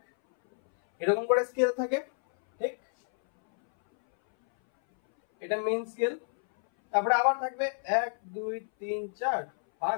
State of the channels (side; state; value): right; silent; 59 dB below the other